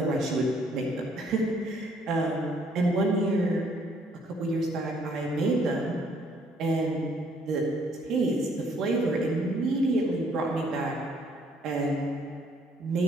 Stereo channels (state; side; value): normal; both; correlation 0.65